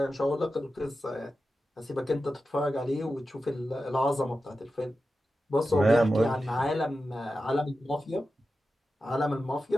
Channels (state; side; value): normal; both; correlation 0.92